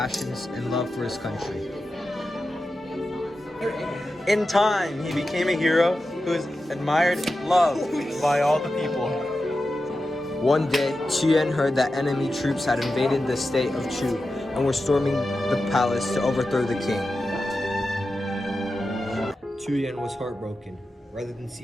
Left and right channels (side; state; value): both; normal; correlation 0.91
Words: and love for his country. In time, he became a hero who was admired and loved by all the people. One day, Chu Yuan heard that enemy troops had invaded the state of Chu and were storming the palace to overthrow the king. Chu Yuan was heartbroken. Rather than see